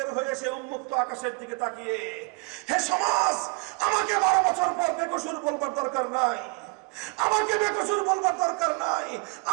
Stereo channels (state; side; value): quieter; left; 29.3 dB